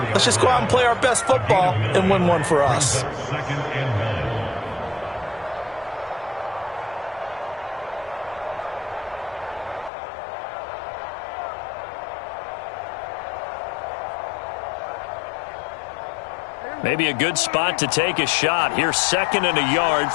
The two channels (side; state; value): right; drops out; at 9.9 s